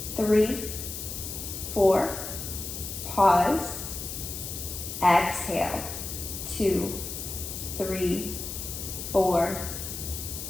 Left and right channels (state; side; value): noise; left; hiss, 7 dB below the sound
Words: 3, 4. Pause. Exhale. 2, 3, 4,